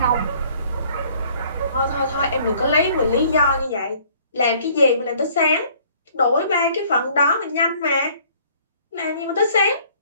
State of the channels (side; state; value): both; inverted; correlation -0.57